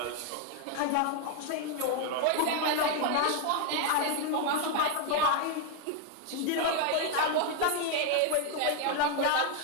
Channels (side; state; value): both; different; correlation 0.00